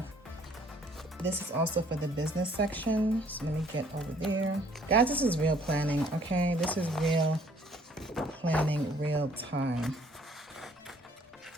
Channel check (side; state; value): both; normal; correlation 0.60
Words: this is also for the business section. So let me get over there. Guys, this is real planning, okay? This is real planning, real time.